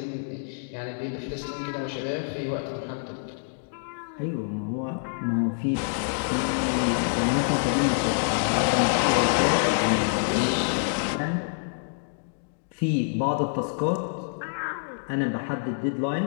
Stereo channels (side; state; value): right; silent; digital silence